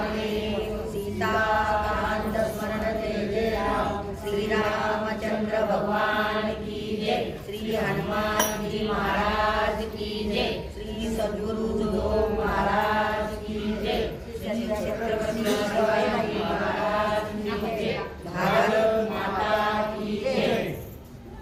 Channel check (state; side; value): identical; both; correlation 1.00